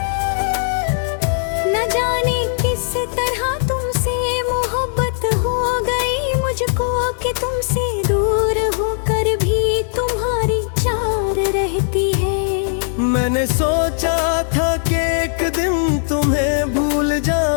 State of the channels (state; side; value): silent; right; digital silence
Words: न जाने किस तरह तुमसे मोहब्बत हो गई मुझको, कि तुमसे दूर होकर भी तुम्हारी चार रहती है। मैंने सोचा था कि एक दिन तुम्हें भूल